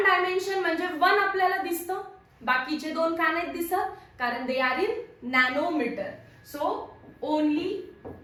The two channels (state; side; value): identical; both; correlation 1.00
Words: डायमेन्शन म्हणजे 1 आपल्याला दिसतं, बाकीचे 2 का नाहीत दिसत, कारण they are in nanometre. So only